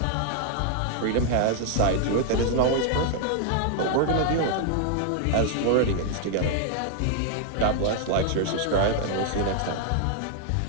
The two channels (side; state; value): both; different; correlation -0.01